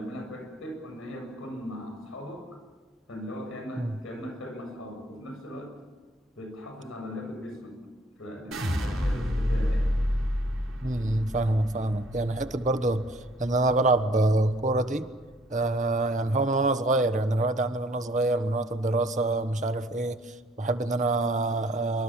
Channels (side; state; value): both; normal; correlation 0.59